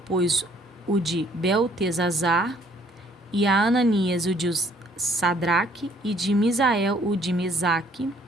pôs o de Beltesazar, e a Ananias o de Sadraque, e de Misael o de Mesaque,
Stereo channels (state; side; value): normal; both; correlation 0.61